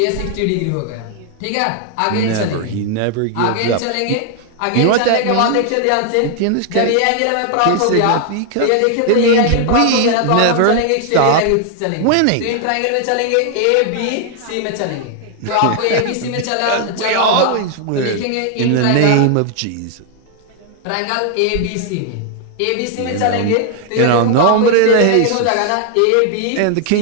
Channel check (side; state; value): both; different; correlation 0.00